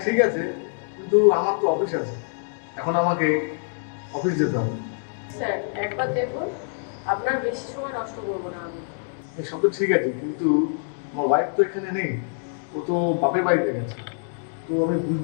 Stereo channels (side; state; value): right; silent; digital silence